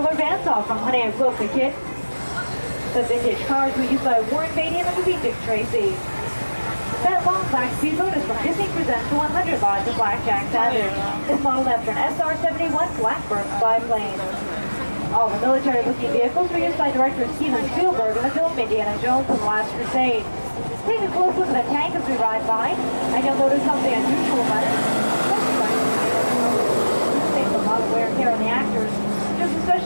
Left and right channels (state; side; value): inverted; both; correlation -1.00